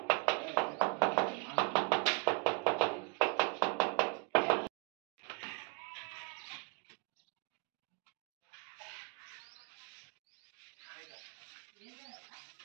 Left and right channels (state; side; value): quieter; left; 32.6 dB